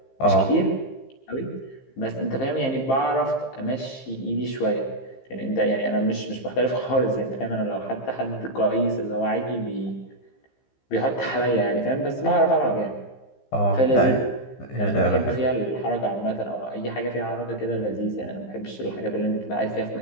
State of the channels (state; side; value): late; right; 15 ms